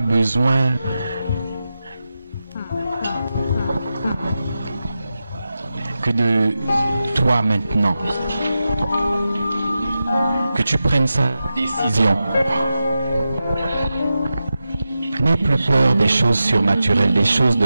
besoin que de toi maintenant. Que tu prennes sa décision. N'aie plus peur des choses surnaturelles, des choses de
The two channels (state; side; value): inverted; both; correlation -0.91